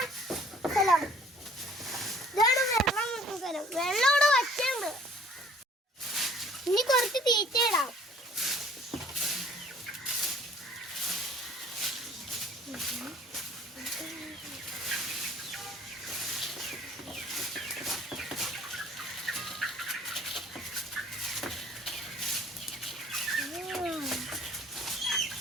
സ്ഥലം. ഇതാണ് വെള്ളം വെക്കുന്ന സ്ഥലം. വെള്ളം ഇവിടെ വച്ചുണ്ട്. ഇനി കുറച്ച് തീറ്റ ഇടാം.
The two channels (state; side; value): normal; both; correlation 0.54